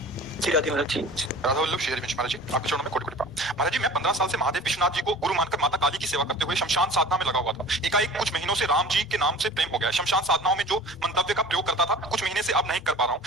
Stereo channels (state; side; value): normal; both; correlation 0.42